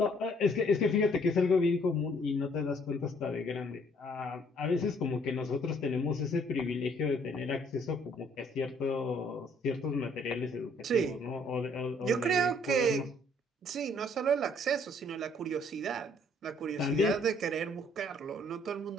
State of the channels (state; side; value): normal; both; correlation 0.63